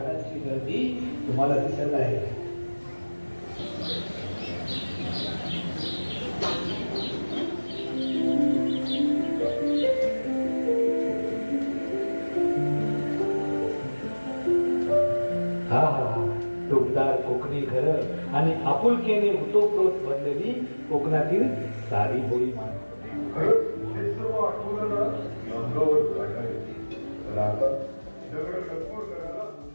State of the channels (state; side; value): inverted; both; correlation -1.00